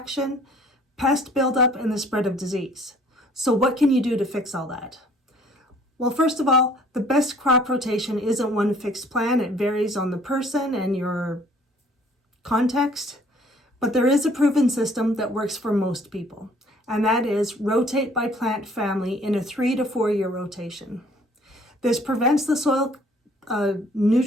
pest buildup, and the spread of disease. So what can you do to fix all that? Well, first of all, the best crop rotation isn't one fixed plan. It varies on the person and your context. But there is a proven system that works for most people, and that is rotate by plant family in a 3 to 4 year rotation. This prevents the soil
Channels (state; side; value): normal; both; correlation 0.57